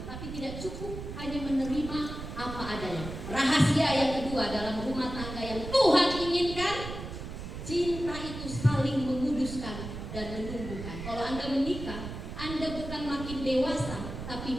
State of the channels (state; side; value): noise; right; rumble, 8 dB below the sound